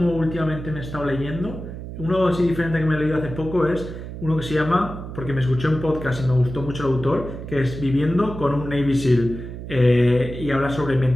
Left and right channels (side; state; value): right; noise; hum, 10 dB below the sound